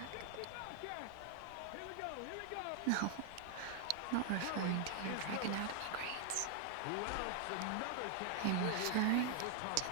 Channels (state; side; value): different; both; correlation 0.00